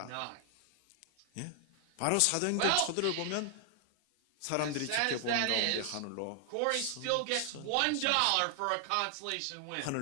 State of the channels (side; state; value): both; different; correlation 0.00